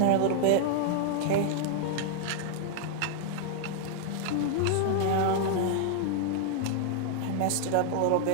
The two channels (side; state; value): both; different; correlation 0.00